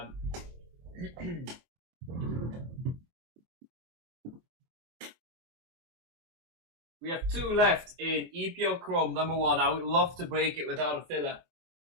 We have two left in EeeeeeePL Chrome number 1. I would love to break it without a filler.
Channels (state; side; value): late; left; 24 ms